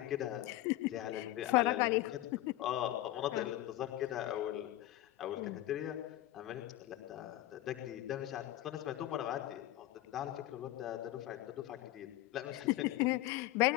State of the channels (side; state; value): right; quieter; 15.3 dB